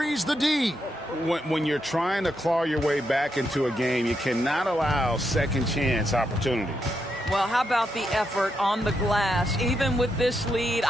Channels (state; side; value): normal; both; correlation 0.82